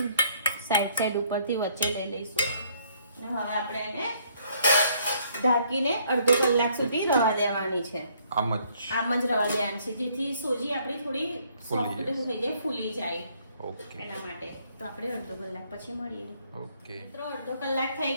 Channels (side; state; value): both; inverted; correlation -0.65